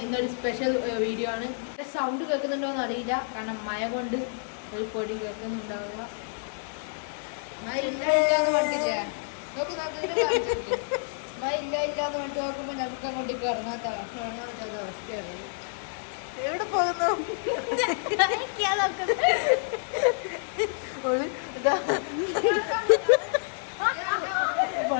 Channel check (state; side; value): silent; right; digital silence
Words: ഇന്നൊരു സ്പെഷ്യൽ വീഡിയോ ആണ്. സൗണ്ട് കേൾക്കുന്നുണ്ടോയെന്ന് അറിയില്ല, കാരണം മഴ കൊണ്ട് ഒരു പൊടി കേൾക്കുന്നുണ്ടാവുക. മഴ ഇല്ലാന്ന് പറഞ്ഞില്ലേ, മഴ ഇല്ലാന്ന് വേണ്ടി നോക്കുമ്പോൾ നമുക്ക് അങ്ങോട്ടേക്ക് ഇറങ്ങാത്ത അവസ്ഥയാണ്. എവിടെ പോകുന്നു?